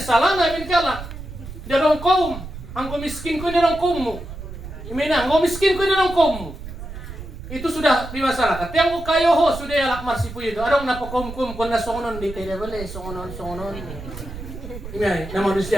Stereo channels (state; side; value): noise; right; rumble, 11 dB below the sound